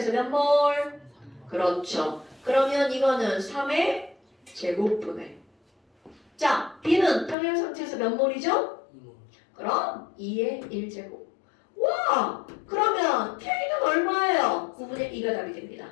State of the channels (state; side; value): drops out; right; at 7.4 s